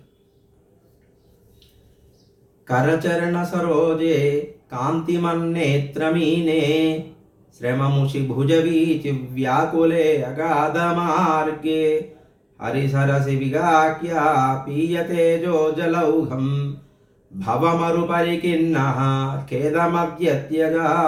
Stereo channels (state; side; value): identical; both; correlation 1.00